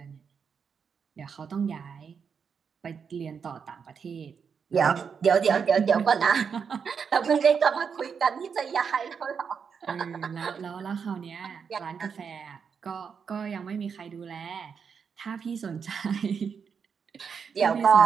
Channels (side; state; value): left; quieter; 6.4 dB